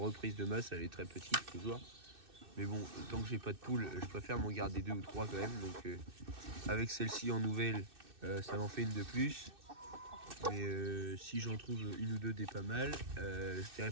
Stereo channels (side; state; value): left; late; 2.6 ms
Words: de masse, elle est très petite toujours. Mais bon, tant que j'ai pas de poule, je préfère m'en garder deux ou trois quand même. Donc avec celle-ci en nouvelle, ça m'en fait une de plus. Mais si j'en trouve une ou deux des pas mal, je dirais